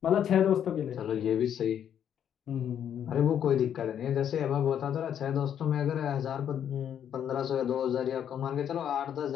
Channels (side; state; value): right; quieter; 9.3 dB